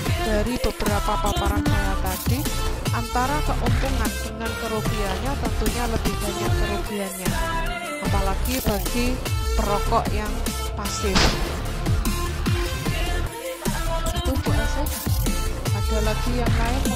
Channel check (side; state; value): both; identical; correlation 1.00